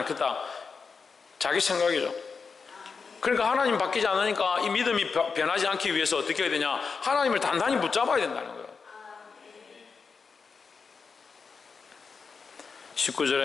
자기 생각이죠. 그러니까 하나님 바뀌지 않으니까 이 믿음이 변하지 않기 위해서 어떻게 해야 되냐? 하나님을 단단히 붙잡아야 된다는 거예요.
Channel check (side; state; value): right; quieter; 5.2 dB